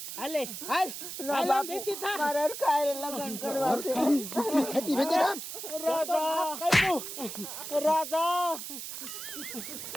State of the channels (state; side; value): noise; right; hiss, 8 dB below the sound